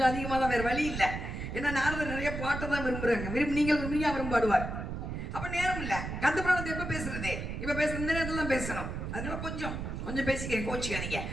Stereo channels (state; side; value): noise; right; rumble, 5 dB below the sound